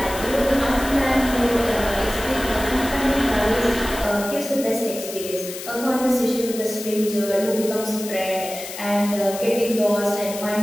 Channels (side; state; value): left; noise; hiss, 10 dB below the sound